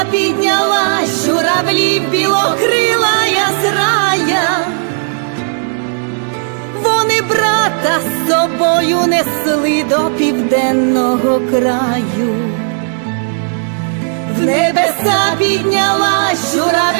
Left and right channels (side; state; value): left; silent; 71 dB below the other